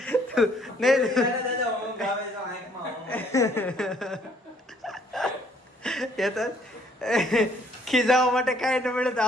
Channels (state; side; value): normal; both; correlation 0.64